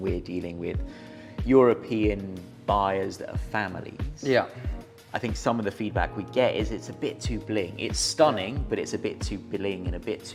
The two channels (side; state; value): both; identical; correlation 1.00